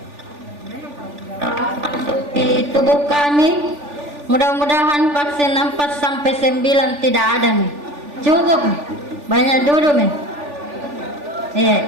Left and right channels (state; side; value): late; left; 3.4 ms